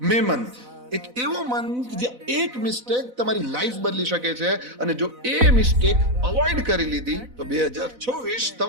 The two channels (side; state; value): left; late; 4.0 ms